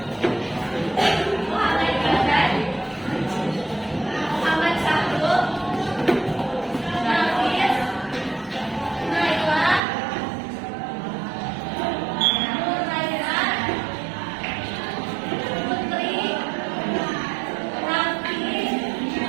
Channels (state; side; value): drops out; left; at 9.8 s